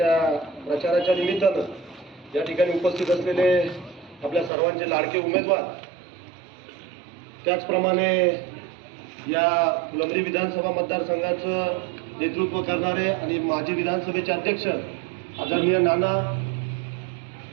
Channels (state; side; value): drops out; left; at 4.5 s